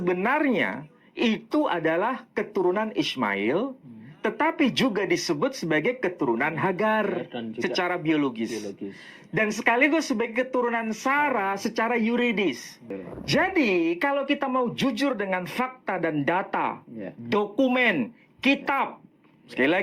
itu adalah keturunan Ismail, tetapi juga disebut sebagai keturunan Hagar secara biologis. Dan sekaligus sebagai keturunan Sarah secara yuridis. Jadi kalau kita mau jujur dengan fakta dan data, dokumen, kitab, sekali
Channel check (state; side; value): identical; both; correlation 1.00